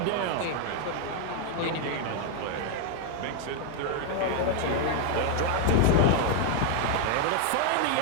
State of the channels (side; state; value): both; different; correlation 0.00